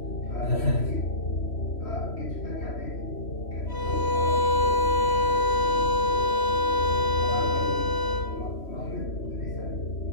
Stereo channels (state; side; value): late; right; 3.1 ms